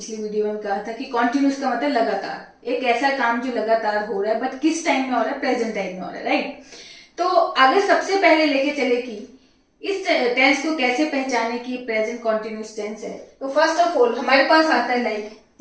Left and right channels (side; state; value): both; identical; correlation 1.00